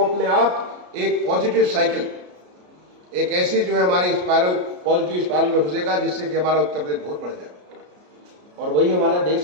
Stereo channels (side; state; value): left; late; 33 ms